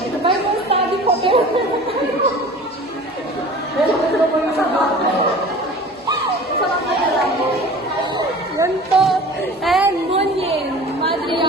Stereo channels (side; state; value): both; normal; correlation 0.41